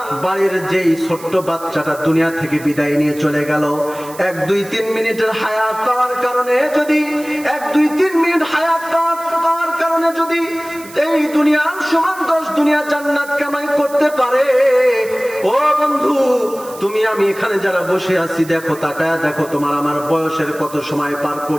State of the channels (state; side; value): noise; right; hiss, 18 dB below the sound